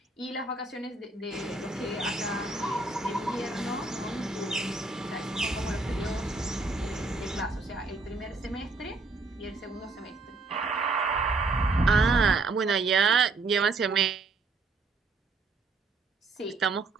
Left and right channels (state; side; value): quieter; left; 3.6 dB